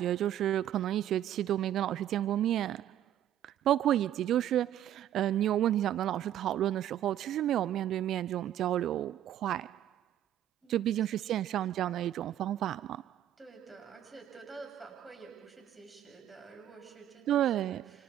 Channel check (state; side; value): quieter; left; 11.5 dB